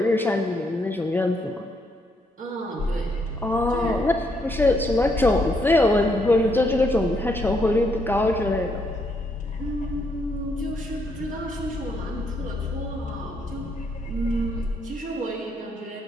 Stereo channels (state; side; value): normal; both; correlation 0.75